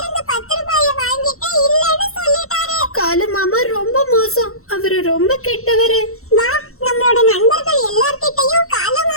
10 ரூபாய வாங்கிட்டு இல்லன்னு சொல்லிட்டாரு. காலு மாமா ரொம்ப மோசம், அவரு ரொம்ப கெட்டவரு. வா, நம்மளோட நண்பர்கள் எல்லார்கிட்டயும் காலு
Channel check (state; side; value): late; right; 0.63 ms